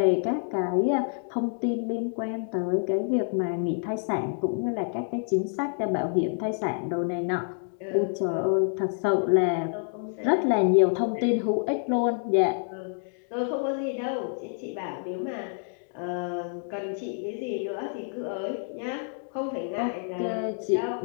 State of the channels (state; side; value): silent; right; 60 dB below the other